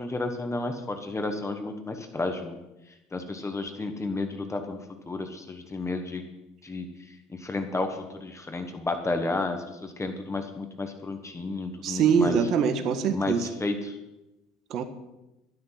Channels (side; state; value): both; normal; correlation 0.65